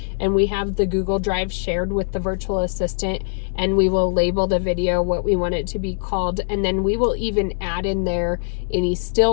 and we have the Google Drive shared with the virtual assistant, and we will label the video what we want it to be called, and then we will even add in there any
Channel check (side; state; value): right; silent; 65 dB below the other